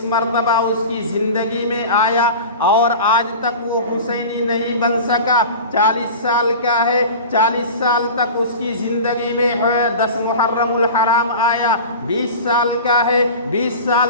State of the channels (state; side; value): inverted; both; correlation -0.34